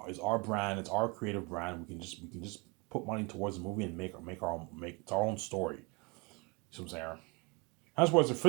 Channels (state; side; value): quieter; left; 28.0 dB